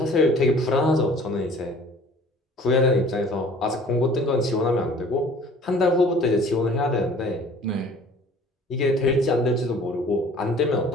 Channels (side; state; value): both; normal; correlation 0.50